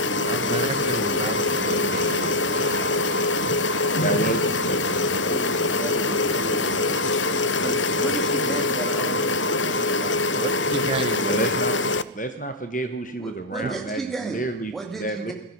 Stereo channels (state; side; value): normal; both; correlation -0.04